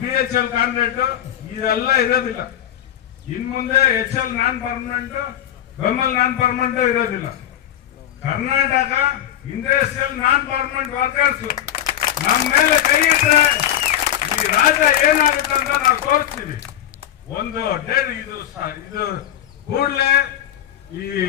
BHL ಕಾಂಟ್ರಾಕ್ಟ್ ಇದೆಲ್ಲ ಇರೋದಿಲ್ಲ. ಇನ್ ಮುಂದೆ HL ನಾನ್ ಪರ್ಮನೆಂಟ್, ಬೆಂಬಲ್ ನಾನ್ ಪರ್ಮನೆಂಟ್ ಇರೋದಿಲ್ಲ. Karnataka industrial non permanent workers ನಮ್ಮ ಮೇಲೆ ಕೈ ಇಟ್ರೆ ಈ ರಾಜ್ಯ ಏನಾಗುತ್ತೆ ಅಂತ ನಾವು ತೋರಿಸ್ತೀವಿ. ಒಂದು ಡೇಟ್ ಇದು ಕೂಡಲೇ ಈ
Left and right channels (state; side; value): quieter; right; 11.2 dB